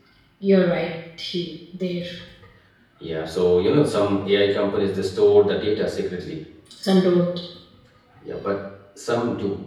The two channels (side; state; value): both; identical; correlation 1.00